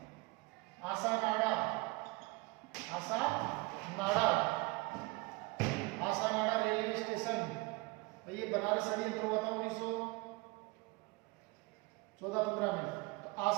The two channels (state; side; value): quieter; left; 24.7 dB